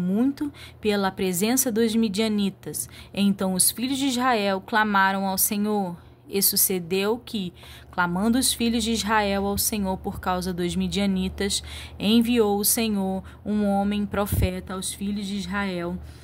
pela presença dos midianitas. Então os filhos de Israel clamaram ao Senhor. E sucedeu que, clamando os filhos de Israel ao Senhor por causa dos midianitas, enviou o Senhor um homem profeta aos filhos de Israel,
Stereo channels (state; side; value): identical; both; correlation 1.00